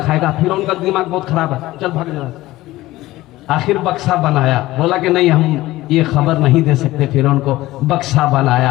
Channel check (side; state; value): right; quieter; 17.3 dB